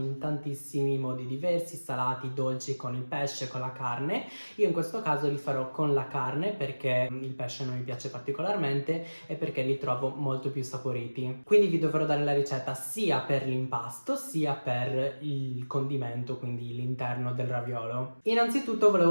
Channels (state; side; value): inverted; both; correlation -1.00